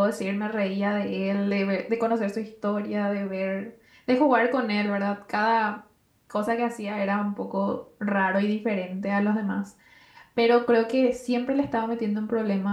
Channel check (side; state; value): both; identical; correlation 1.00